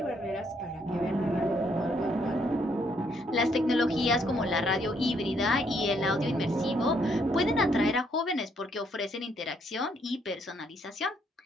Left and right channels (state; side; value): normal; both; correlation 0.71